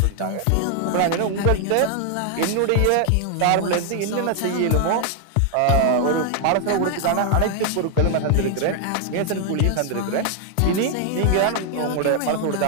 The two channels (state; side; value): different; both; correlation 0.00